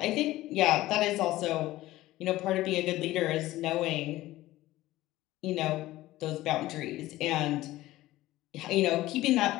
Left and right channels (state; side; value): quieter; right; 16.6 dB